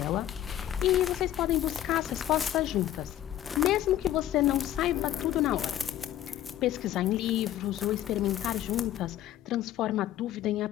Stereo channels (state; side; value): quieter; right; 12.3 dB